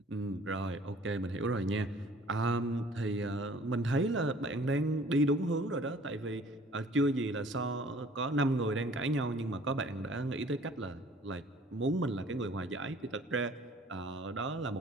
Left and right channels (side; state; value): both; normal; correlation 0.53